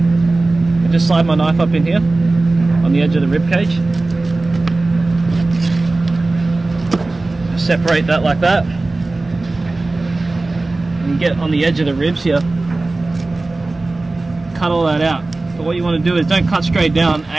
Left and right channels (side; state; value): left; quieter; 3.2 dB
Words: just slide my knife up in here on the edge of the rib cage. Just separate that like that. And you get on the edge of the ribs here, cut all that out. But what you want to do is don't cut straight down,